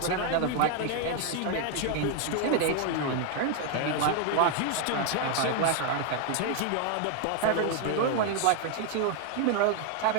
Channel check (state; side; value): different; both; correlation 0.01